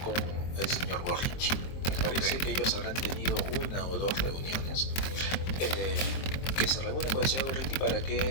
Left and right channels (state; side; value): late; right; 23 ms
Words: con el señor Gorriti. Me parece que ellos habrán tenido una o dos reuniones, que se reúne con el señor Gorriti para que